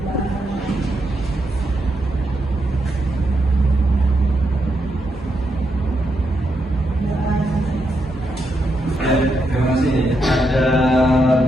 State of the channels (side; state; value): both; normal; correlation 0.82